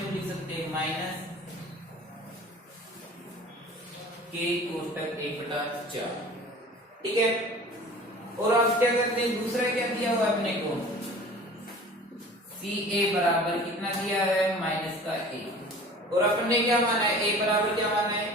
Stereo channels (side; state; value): both; normal; correlation 0.43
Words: लिख सकते हैं, -k/1/4। ठीक है, और अब क्या करते हैं, दूसरा क्या दिया हुआ अपने को, CA बराबर कितना दिया है, -1, और अपन ने क्या माना है, A बराबर क्या माना है,